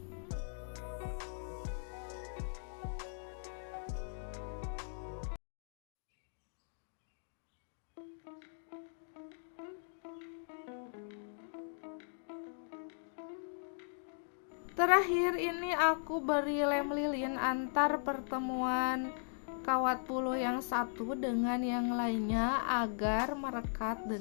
Terakhir ini aku beri lem lilin antar pertemuan kawat bulu yang satu dengan yang lainnya agar merekat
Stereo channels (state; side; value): silent; right; digital silence